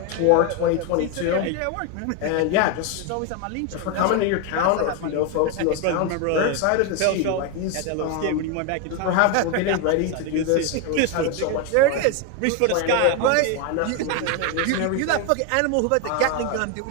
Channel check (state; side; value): different; both; correlation 0.01